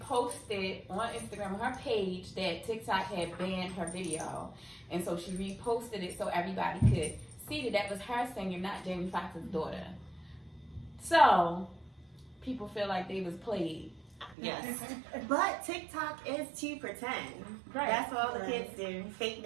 on Instagram, on her page, that TikTok had banned her video. And so she reposted it so everybody could see that was her singing, not Jamie Foxx's daughter. So, people feel like they was played. Yes. But TikTok is to pretend. Right. That's what all the kids do. Fake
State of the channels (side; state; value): left; drops out; at 14.4 s